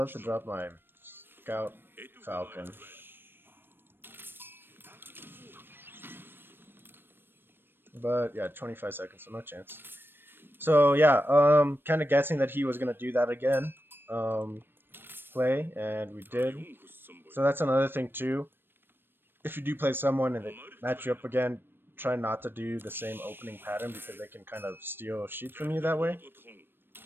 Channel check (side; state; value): left; late; 0.099 ms